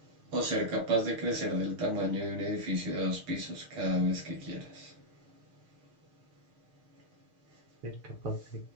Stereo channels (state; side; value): late; left; 6.6 ms